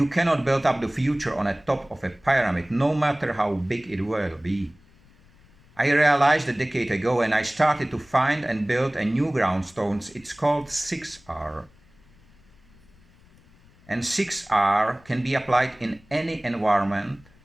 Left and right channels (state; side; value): noise; left; rumble, 28 dB below the sound